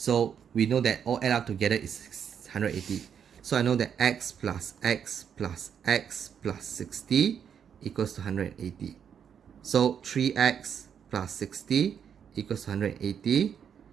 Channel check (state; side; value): quieter; left; 7.9 dB